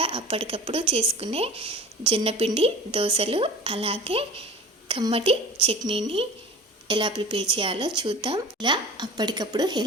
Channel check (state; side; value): normal; both; correlation 0.39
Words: అప్పటికప్పుడు చేసుకునే జొన్నపిండి దోశలు, అలాగే కమ్మటి చట్నీని ఎలా ప్రిపేర్ చేయాలో చూద్దాం. ఇలా అప్పటికప్పుడు